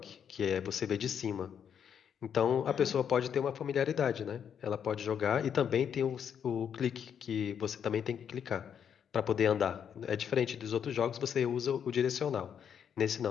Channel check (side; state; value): right; quieter; 8.1 dB